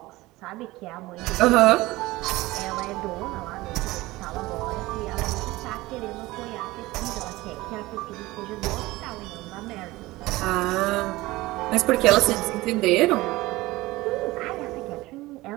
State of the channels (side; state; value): left; quieter; 19.4 dB